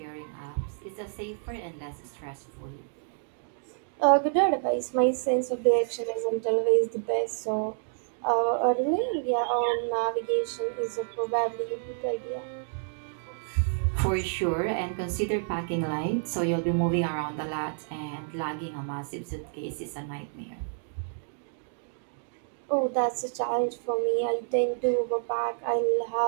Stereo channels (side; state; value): left; silent; digital silence